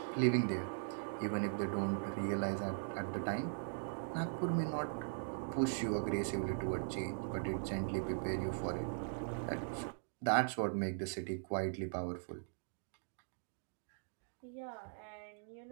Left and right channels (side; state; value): left; silent; digital silence